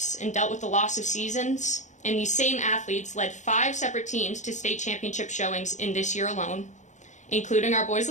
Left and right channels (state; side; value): late; right; 0.35 ms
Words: and dealt with the loss of seasons, and these same athletes led 5 separate teams to state championship showings in this year alone, including our boys